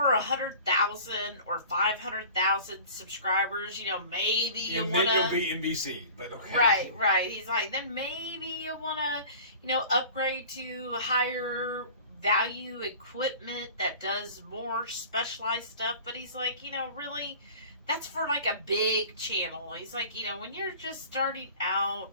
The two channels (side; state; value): both; inverted; correlation -0.43